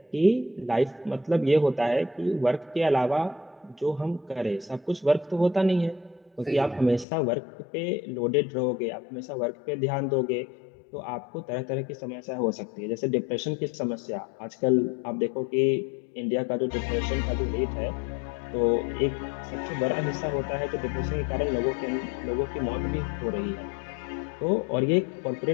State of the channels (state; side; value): drops out; right; at 7.1 s